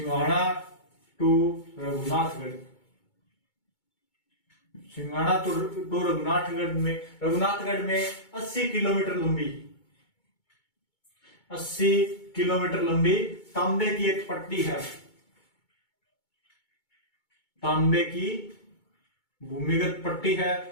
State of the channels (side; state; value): right; late; 2.2 ms